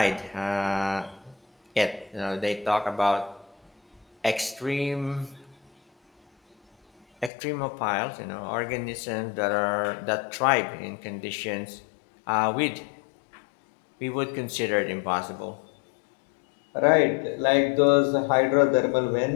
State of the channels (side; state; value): right; drops out; at 7.3 s